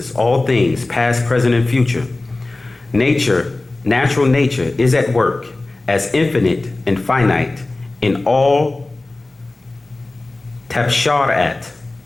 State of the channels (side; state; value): right; quieter; 3.0 dB